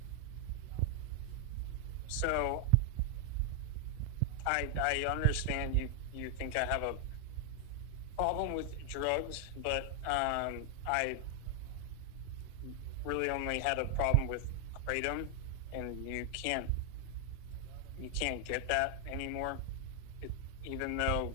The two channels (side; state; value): both; different; correlation 0.00